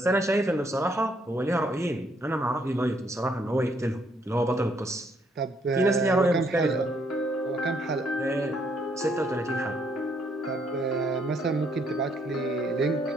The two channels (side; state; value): both; normal; correlation 0.69